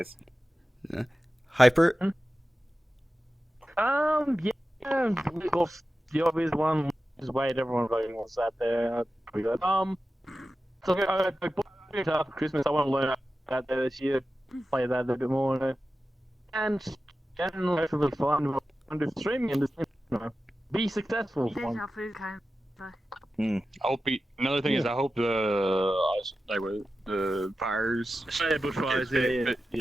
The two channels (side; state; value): both; normal; correlation 0.93